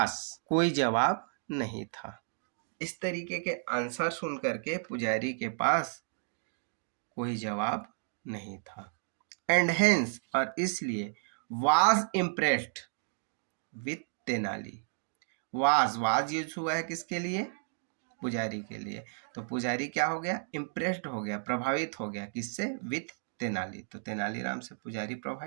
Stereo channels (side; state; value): left; silent; digital silence